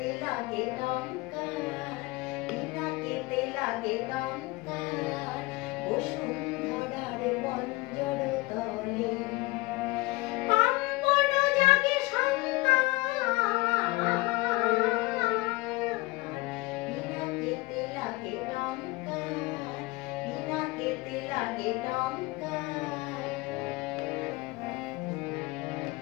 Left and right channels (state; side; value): quieter; right; 22.4 dB